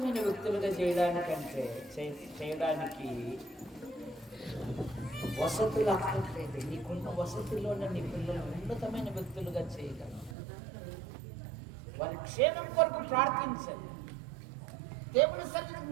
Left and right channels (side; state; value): left; drops out; at 10.4 s